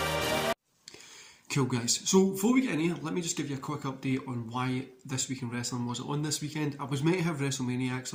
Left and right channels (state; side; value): identical; both; correlation 1.00